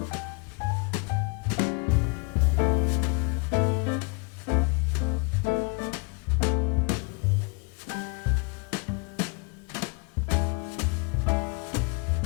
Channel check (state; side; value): quieter; right; 32.8 dB